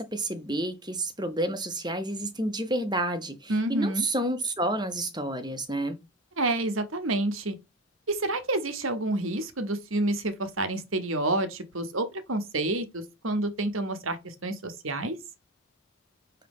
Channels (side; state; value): both; normal; correlation 0.26